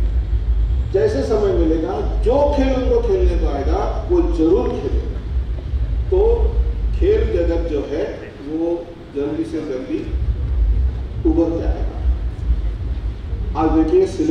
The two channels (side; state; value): both; identical; correlation 1.00